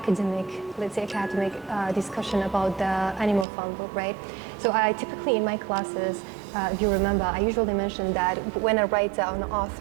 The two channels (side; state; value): left; drops out; at 3.5 s